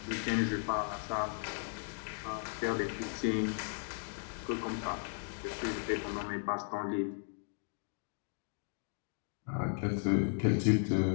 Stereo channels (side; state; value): right; silent; 54 dB below the other